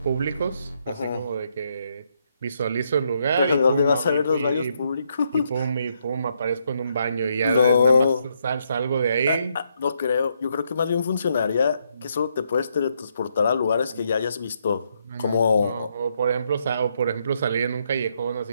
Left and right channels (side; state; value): both; inverted; correlation -0.76